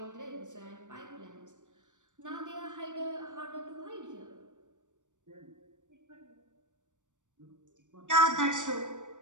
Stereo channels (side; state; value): left; late; 0.86 ms